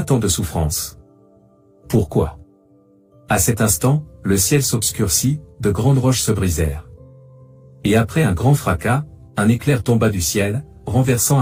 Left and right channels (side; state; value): both; identical; correlation 1.00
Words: tant de souffrance? Pourquoi? À cet instant, le ciel s'obscurcit, de grandes roches se brisèrent. Et après un grand fracas, un éclair tomba du ciel, renversant